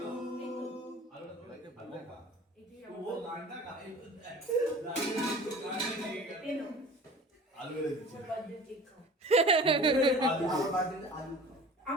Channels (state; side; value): normal; both; correlation 0.42